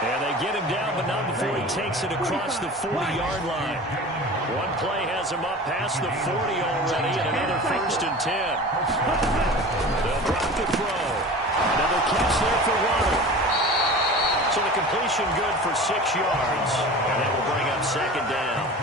they get him down, but not before he takes it across the 40-yard line. One play has him up past the 40 already, and another first and 10. They'll drop the throw. Another catch there for Waddle. So the completion good for 6 yards. And that will bring up second down.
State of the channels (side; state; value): both; normal; correlation 0.36